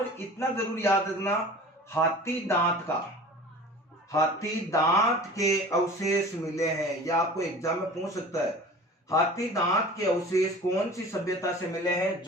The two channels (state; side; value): normal; both; correlation 0.41